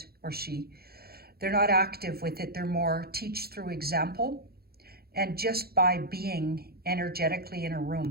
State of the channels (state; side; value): late; left; 0.45 ms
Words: or she. They're not active with it. They're more teach through example, and just by being energetically in a